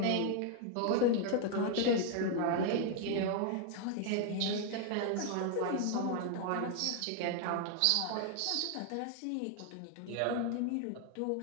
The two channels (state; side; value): different; both; correlation 0.00